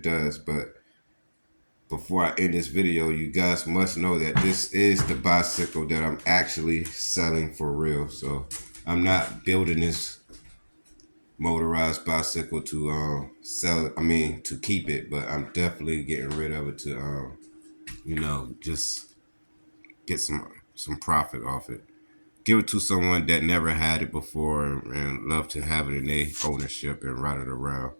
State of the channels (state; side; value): inverted; both; correlation -1.00